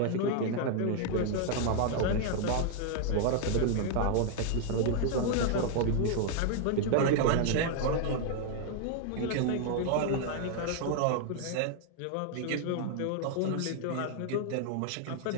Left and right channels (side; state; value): both; different; correlation 0.00